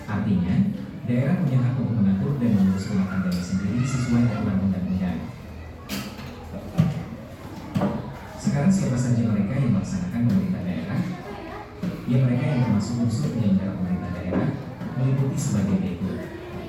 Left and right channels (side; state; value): both; identical; correlation 1.00